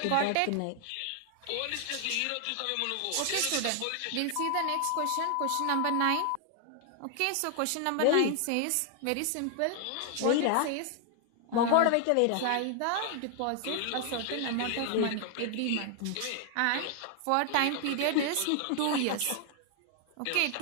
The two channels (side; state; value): both; different; correlation 0.00